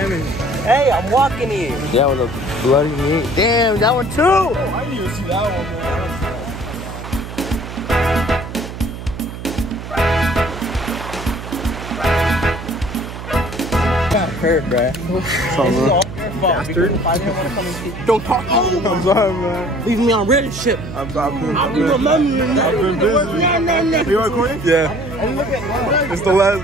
Hey, I'm walking here. Yeah, with a bloody knee. Damn, that one too. Oh, I didn't even see that one, man. Got hurt, bruh. Bastard. Don't talk to me. I'm sorry, man. Leave me on Reddit shit. I've been busy. You recording? Yeah. It's the last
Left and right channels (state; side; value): noise; right; hum, 10 dB below the sound